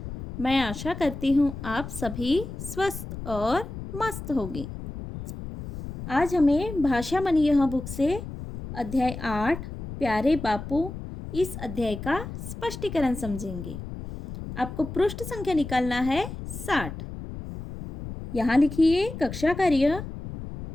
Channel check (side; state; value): left; noise; rumble, 9 dB below the sound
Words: मैं आशा करती हूँ आप सभी स्वस्थ और मस्त होंगे। आज हमें भाषा मनी यह बुक से अध्याय 8 प्यारे बापू इस अध्याय का स्पष्टीकरण समझेंगे। आपको पृष्ठ संख्या निकालना है 60। यहाँ लिखिए कक्षा कार्य,